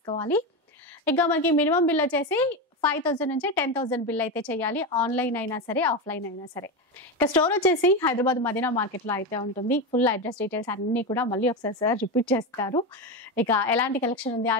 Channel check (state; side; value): normal; both; correlation 0.16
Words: ఇక మనకి మినిమం బిల్ వచ్చేసి 5,000 నుంచి 10,000 బిల్ అయితే చేయాలి. ఆన్లైన్ అయినా సరే, ఆఫ్లైన్ అయినా సరే. ఇక స్టోర్ వచ్చేసి హైదరాబాద్ మదీనా మార్కెట్ లో అయితే ఉంటుంది. ఫుల్ అడ్రస్ డీటెయిల్స్ అన్ని కూడా మళ్ళీ ఒకసారి సార్ రిపీట్ చేస్తారు. ఇక ఎలాంటి కలెక్షన్ ఉంది,